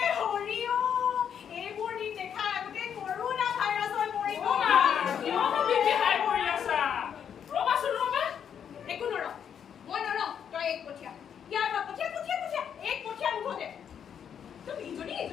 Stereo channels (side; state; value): right; quieter; 8.2 dB